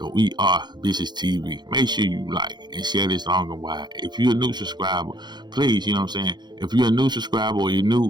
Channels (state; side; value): late; left; 0.21 ms